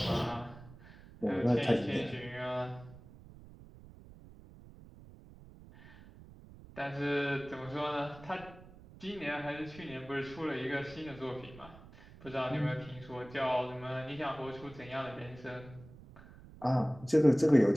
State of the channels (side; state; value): right; noise; rumble, 19 dB below the sound